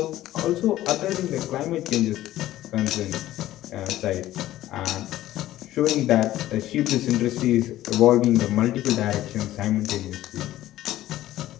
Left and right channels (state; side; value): quieter; right; 14.5 dB